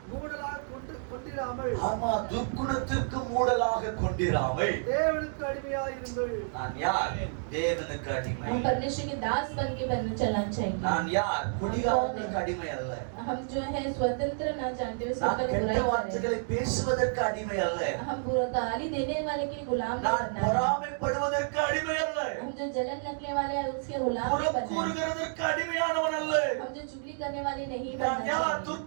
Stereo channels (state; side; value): silent; left; digital silence